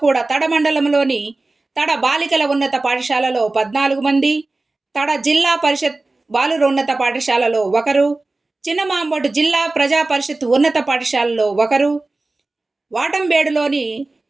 కూడా తడ మండలంలోని తడ బాలికల ఉన్నత పాఠశాలలో 14 మంది, తడ జిల్లా పరిషత్ బాలుర ఉన్నత పాఠశాలలో 1, చిన్నమాంబోటు జిల్లా ప్రజా పరిషత్ ఉన్నత పాఠశాలలో 1, వాటంబేడులోని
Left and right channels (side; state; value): left; quieter; 3.2 dB